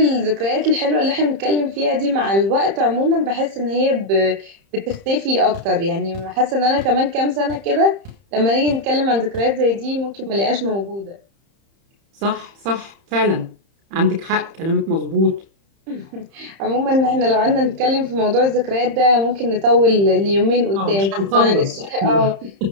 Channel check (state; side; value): late; left; 30 ms